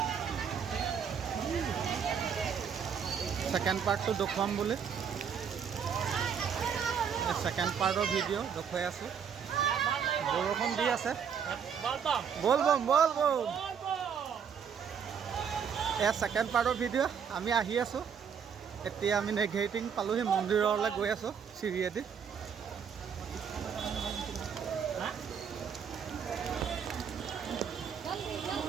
ছেকেণ্ড পাৰ্টটো দেখুৱাম বুলি। ছেকেণ্ড পাৰ্টৰ ভিডিঅ' দেখুৱাই আছোঁ। বৰষুণ দি আছে। বল বম। এয়া ছেকেণ্ড পাৰ্টৰ ভিডিঅ'। আমি আহি আছোঁ। এতিয়া আমি নেঘেৰিটিং পালোহি, মন্দিৰলৈ গৈ আছোঁ চিৰিয়েদি।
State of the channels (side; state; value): left; quieter; 7.3 dB